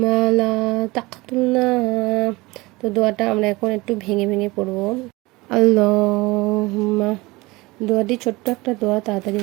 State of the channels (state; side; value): quieter; left; 22.3 dB